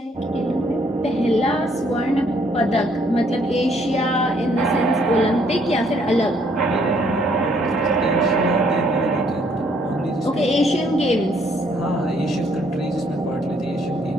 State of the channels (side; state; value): both; normal; correlation 0.66